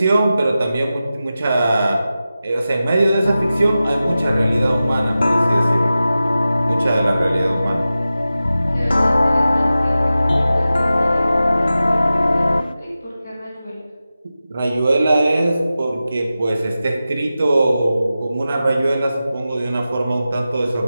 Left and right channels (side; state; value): both; inverted; correlation -0.94